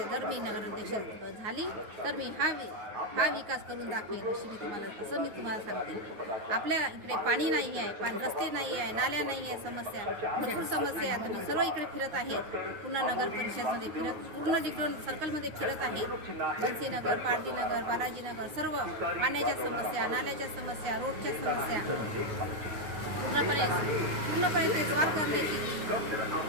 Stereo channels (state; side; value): late; left; 9.9 ms